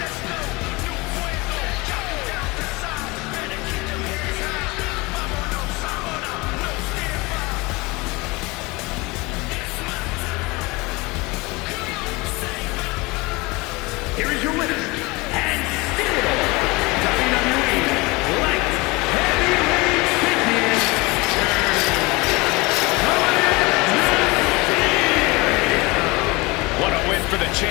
Here is your winner, and still WWE Light Heavyweight Champion. What a win for the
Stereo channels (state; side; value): quieter; right; 24.4 dB